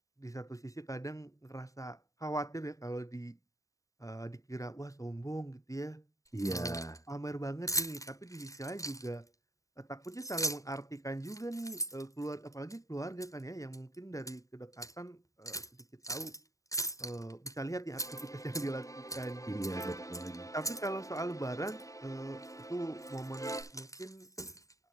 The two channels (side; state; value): right; late; 0.16 ms